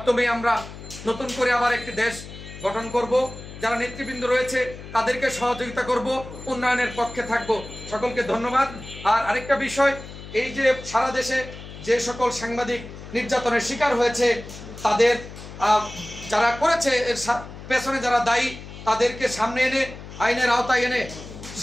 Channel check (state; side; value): noise; left; hum, 14 dB below the sound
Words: আমরা নতুন করে আবার একটি দেশ গঠন করব। যারা নেতৃবৃন্দ রয়েছে তাদেরকে সহযোগিতা করব, উন্নয়নের পক্ষে থাকব। সকলকে ধন্যবাদ। আর আরেকটা বিষয়, এই যে সারা দেশে যে সকল সাংবাদিক নির্যাতনের শিকার হয়েছে, তাদের যারা করেছে এর পেছনে যারা দায়ী, তাদেরকে সামনে এনে আইনের আওতায় এনে